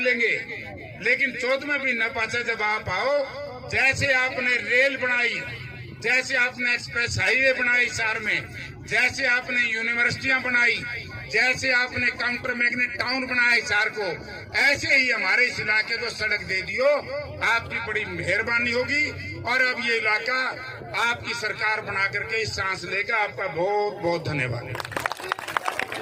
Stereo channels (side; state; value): both; identical; correlation 1.00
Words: लेंगे, लेकिन 14वें महीना पाचा जब आप आओ, जैसे आपने रेल बनाई, जैसे आपने एक्सप्रेस हाईवे बनाई शहर में, जैसे आपने यूनिवर्सिटियां बनाई, जैसे आपने काउंटर मैग्नेट टाउन बनाया शहर को, ऐसे ही हमारे इस इलाके को सड़क दे दियो, आपकी बड़ी मेहरबानी होगी। और अब ये इलाका आपकी सरकार बना करके इस सांस लेगा। आपका बहुत बहुत धन्यवाद।